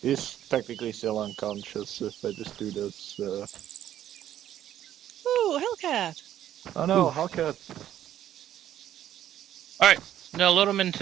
He's technically still unconscious if I just do this. Ooh, Hellcat! Oh no, Hellcat. All right, now load him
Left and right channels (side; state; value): left; quieter; 11.6 dB